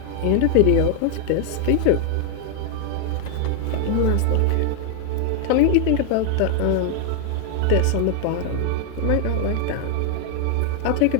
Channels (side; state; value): both; different; correlation 0.00